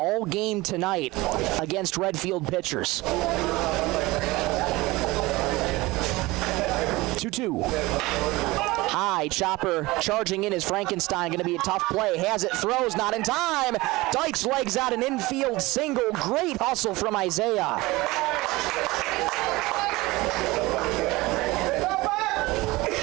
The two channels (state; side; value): quieter; left; 20.9 dB